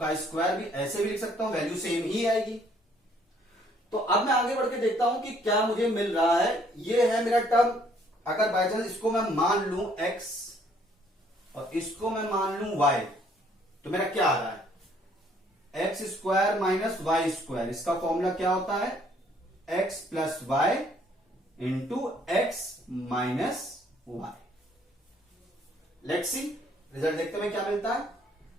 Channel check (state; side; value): normal; both; correlation 0.63